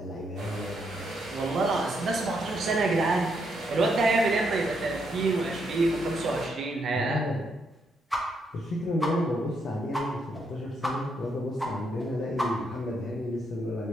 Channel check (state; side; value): normal; both; correlation 0.77